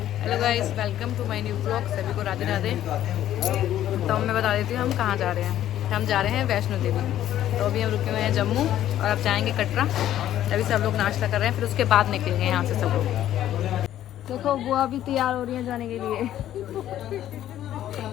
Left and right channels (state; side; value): quieter; right; 12.2 dB